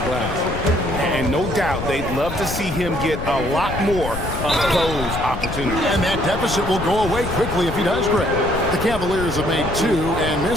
glass. And no doubt, they'd love to see him get a lot more of those opportunities. And that deficit will go away quickly if he does, Greg. The Cavaliers have made 2 and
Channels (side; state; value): left; noise; rumble, 7 dB below the sound